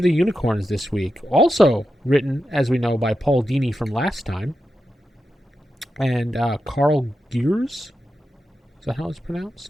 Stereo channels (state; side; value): normal; both; correlation 0.89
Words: the Unicorns this week. Also written, as we know, by Paul Dini from last time. And Carl Gears? Is that how it's